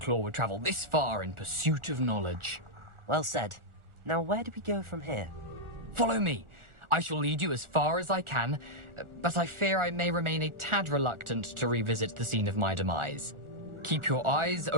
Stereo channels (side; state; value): left; late; 1.4 ms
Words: would travel this far in pursuit of knowledge. Well said. Now where do we go from here? Follow me. I shall lead you as far as I can, but I fear I may remain a tad reluctant to revisit the scene of my demise. Keep your eyes